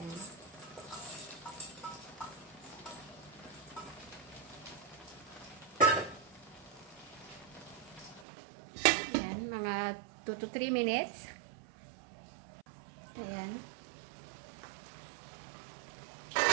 Ayan, mga 2 to 3 minutes. Ayan.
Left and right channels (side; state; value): left; drops out; at 8.2 s